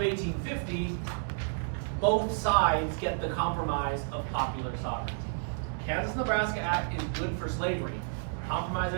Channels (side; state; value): left; silent; digital silence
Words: 1850, both sides get the compromise of popular sovereignty. Kansas-Nebraska Act is good for slavery. Compromise